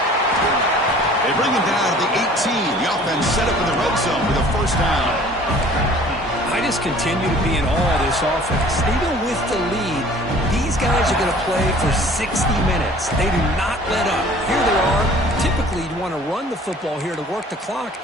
They bring him down to the 18. The offense set up in the red zone with a first down. I just continue to be in awe of this offense. Even with the lead, these guys are going to play for 60 minutes. They do not let up. Here they are. Typically, you want to run the football here to work the clock,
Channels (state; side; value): normal; both; correlation 0.50